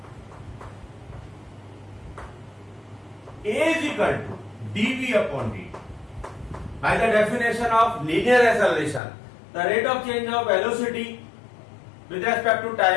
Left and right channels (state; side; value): drops out; right; at 9.0 s